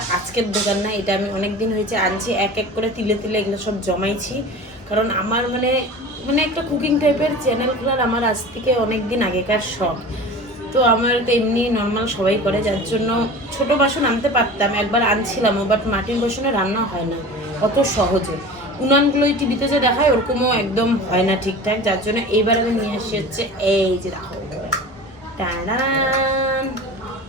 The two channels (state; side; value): normal; both; correlation 0.36